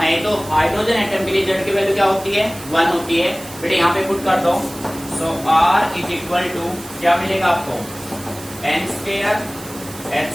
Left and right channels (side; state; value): right; noise; hiss, 16 dB below the sound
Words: तो हाइड्रोजन एटम के लिए जेड की वैल्यू क्या होती है 1 होती है। बेटे यहाँ पे पुट कर दो, so R is equal to क्या मिलेगा आपको N square H